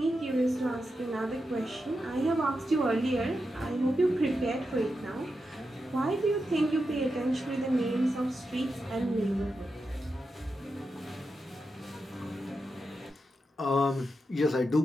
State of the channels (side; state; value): both; normal; correlation 0.88